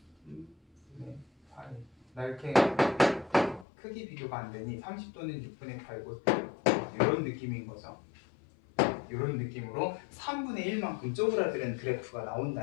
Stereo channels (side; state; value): right; drops out; at 3.7 s